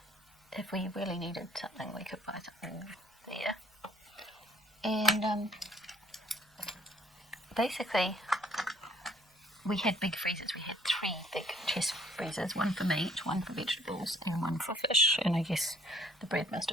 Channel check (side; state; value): both; normal; correlation 0.58